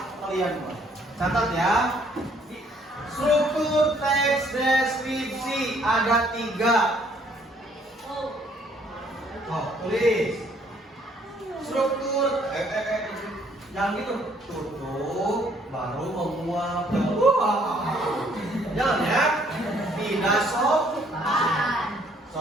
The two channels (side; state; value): both; normal; correlation 0.64